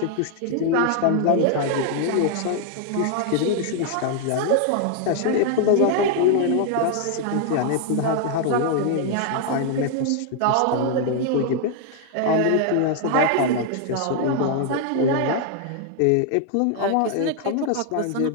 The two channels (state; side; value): different; both; correlation 0.00